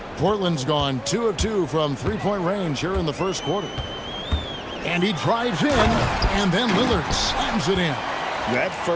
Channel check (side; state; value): both; identical; correlation 1.00